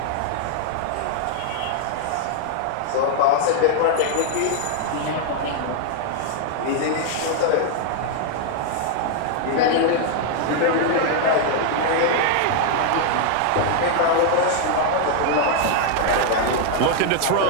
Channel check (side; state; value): both; different; correlation 0.00